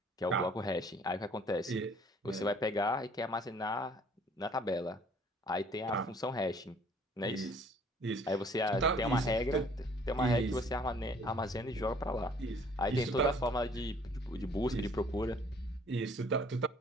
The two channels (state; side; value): normal; both; correlation 0.57